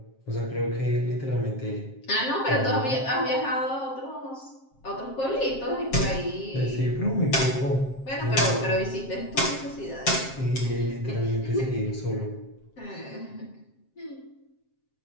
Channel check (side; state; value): right; late; 7.5 ms